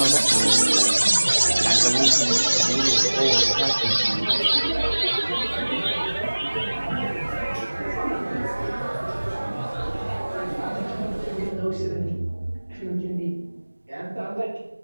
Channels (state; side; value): inverted; both; correlation -1.00